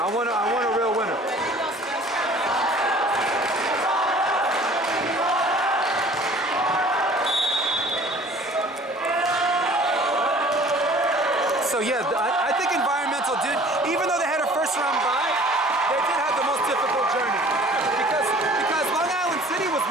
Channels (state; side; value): normal; both; correlation 0.49